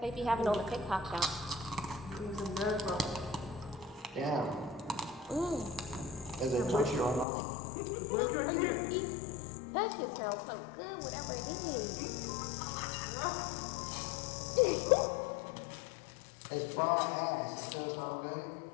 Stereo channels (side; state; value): right; drops out; at 7.2 s